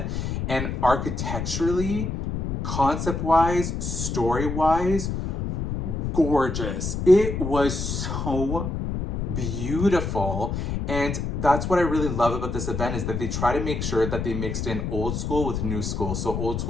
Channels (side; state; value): left; noise; rumble, 2 dB below the sound